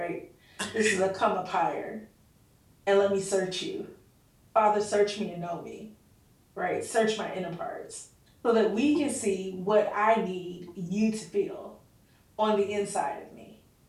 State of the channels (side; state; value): both; identical; correlation 1.00